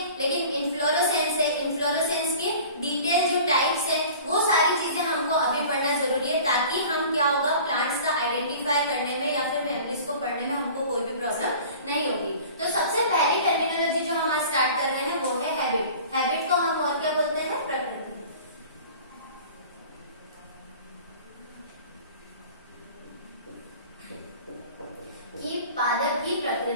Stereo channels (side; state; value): both; inverted; correlation -0.43